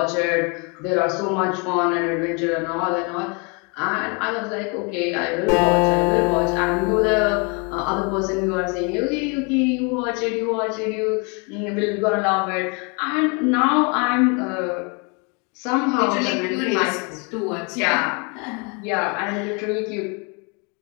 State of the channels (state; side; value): quieter; right; 33.0 dB